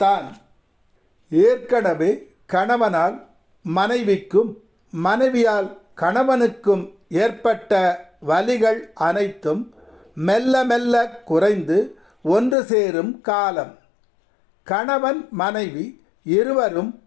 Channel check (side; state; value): right; drops out; at 12.6 s